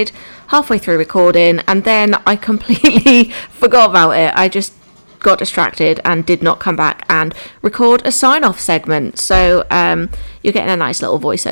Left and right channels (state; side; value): inverted; both; correlation -1.00